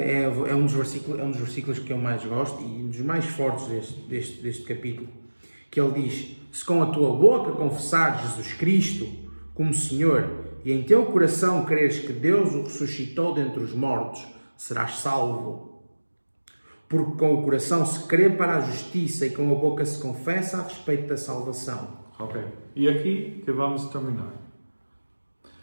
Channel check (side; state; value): both; inverted; correlation -1.00